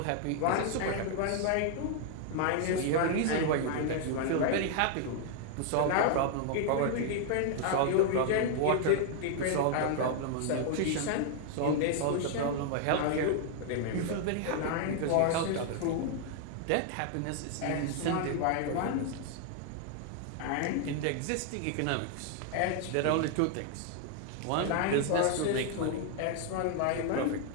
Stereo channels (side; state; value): both; different; correlation 0.00